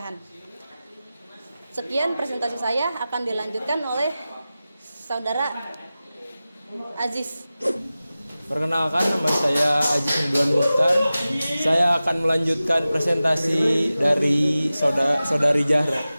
Sekian presentasi saya, akan dilanjutkan oleh saudara Aziz. Perkenalkan, nama saya Aziz Ridwan Mukhtar. Saya akan melanjutkan presentasi dari saudari Zahra.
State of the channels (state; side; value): inverted; both; correlation -0.95